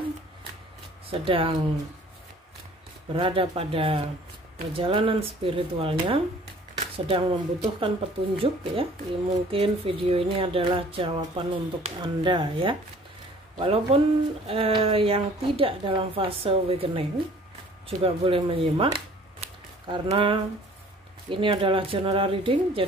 sedang berada pada perjalanan spiritualnya, sedang membutuhkan petunjuk ya. Mungkin video ini adalah jawaban untuk Anda ya. Walaupun yang tidak dalam fase awakening juga boleh menyimak, karena ini adalah general reading,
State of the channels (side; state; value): both; normal; correlation 0.52